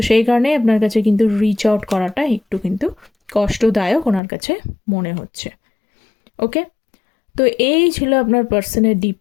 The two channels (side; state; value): right; drops out; at 4.2 s